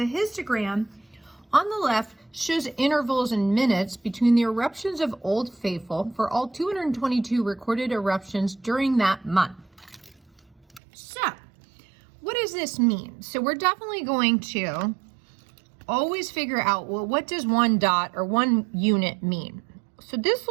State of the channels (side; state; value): left; drops out; at 10.8 s